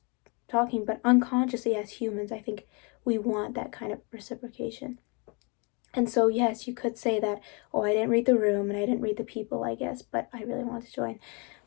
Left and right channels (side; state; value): right; quieter; 32.5 dB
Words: talking, but unconsciously as humans, I think we want that kind of reciprocation. And so, yes, you could say that, oh, I didn't read the room and I didn't read the people, I guess, but I really wanted to join.